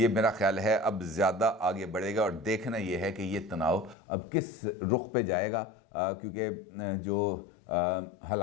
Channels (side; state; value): right; drops out; at 4.0 s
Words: मेरा ख्याल है अब ज़्यादा आगे बढ़ेगा। और देखना ये है कि ये तनाव अब किस रुख पे जाएगा, क्योंकि जो